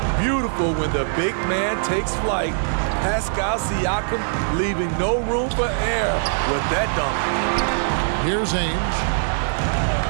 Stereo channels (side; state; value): left; silent; digital silence